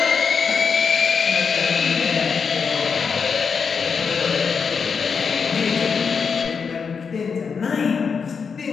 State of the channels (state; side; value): quieter; right; 5.8 dB